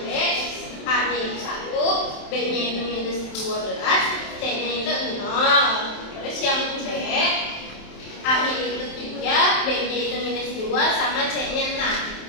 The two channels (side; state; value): right; late; 27 ms